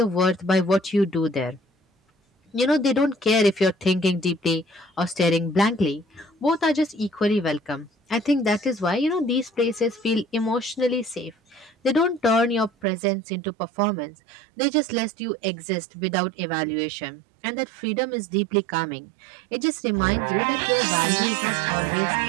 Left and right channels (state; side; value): drops out; left; at 12.9 s